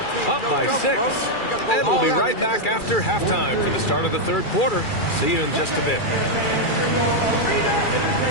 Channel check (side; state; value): right; late; 2.3 ms